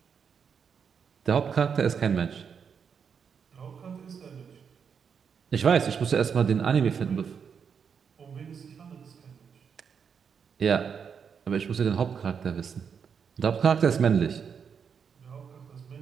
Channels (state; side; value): quieter; left; 6.7 dB